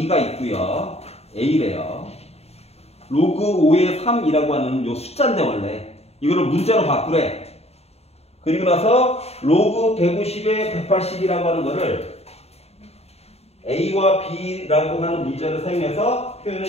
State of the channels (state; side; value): late; right; 0.30 ms